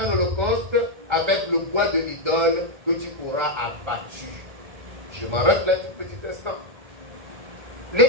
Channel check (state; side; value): late; left; 1.3 ms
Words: un holocauste avec le bois de l'idole que tu auras abattu. Je m'arrête là un tout petit instant.